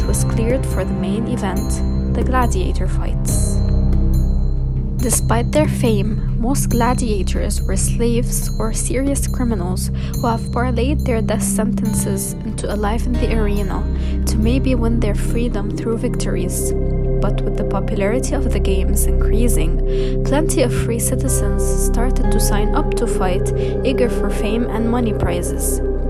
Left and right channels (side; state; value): both; identical; correlation 1.00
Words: was cleared for the main event, the gladiator fights. Despite their fame, most gladiators were slaves or serious criminals who have parlayed their death sentences into a life in the arena to maybe win their freedom through victories. But with the popularity of the games increasing, plenty of free citizens started to sign up to fight, eager for fame and money prizes.